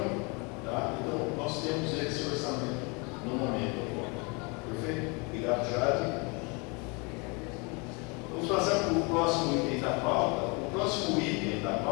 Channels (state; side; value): quieter; right; 30.5 dB